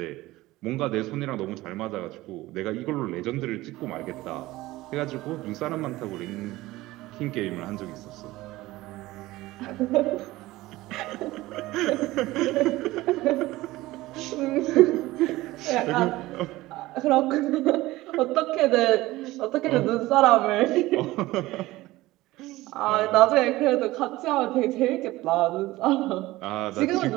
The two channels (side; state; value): left; quieter; 18.2 dB